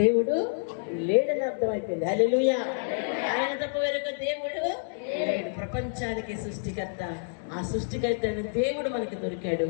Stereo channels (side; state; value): right; silent; digital silence